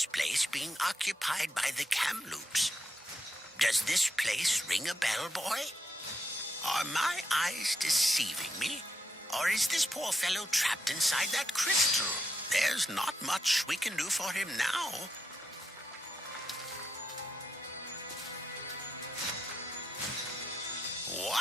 place being occupied by the Kamloops. Does this place ring a bell, boy? Are my eyes deceiving me? Or is this poor fellow trapped inside that crystal There's not much we can do for him now.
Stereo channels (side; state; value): both; normal; correlation 0.83